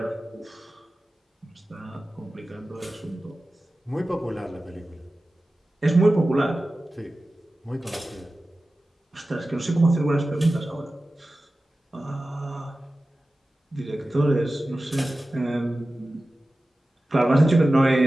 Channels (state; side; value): normal; both; correlation 0.95